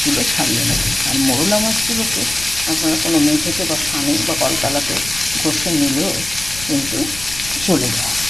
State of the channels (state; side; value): noise; left; rumble, 14 dB below the sound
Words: ছাড়িয়ে নেবেন। আর মোরলা মাছগুলোকে আপনারা কোনো মেঝেতে বা ছানে বা কলতলাতে ঘষে নিলেও কিন্তু চলে যায়,